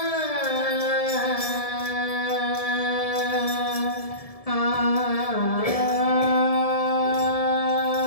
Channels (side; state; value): right; late; 1.7 ms